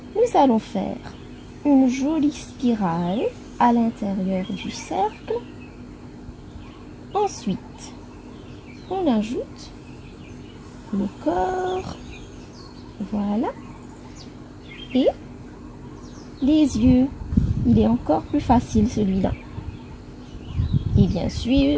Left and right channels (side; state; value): both; identical; correlation 1.00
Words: Nous allons faire une jolie spirale à l'intérieur du cercle. Ensuite, on ajoute le corps, voilà, et les yeux. Il est encore plus facile celui-là. Et bien